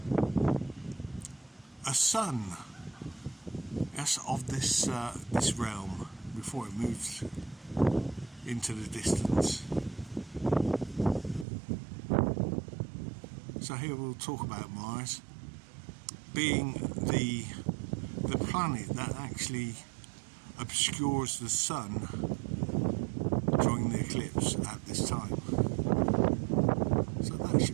a sun, yes, of this this realm before it moved into the distance. So here we'll talk about Mars being the planet that actually obscures the sun during the eclipse at this time. So that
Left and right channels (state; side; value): drops out; left; at 11.5 s